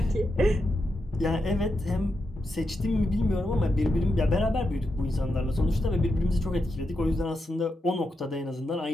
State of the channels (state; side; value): normal; both; correlation 0.86